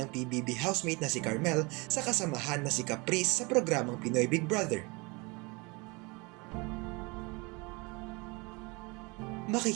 PBB housemate na si Carmel sa kasamahan na si Caprice sa programang Pinoy Big Brother.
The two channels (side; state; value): left; quieter; 27.1 dB